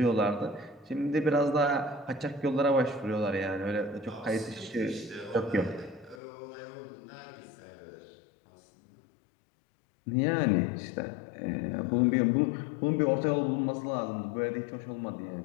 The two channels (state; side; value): drops out; right; at 6.2 s